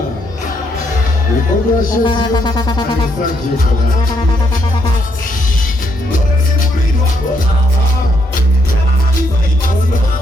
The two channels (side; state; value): both; normal; correlation 0.74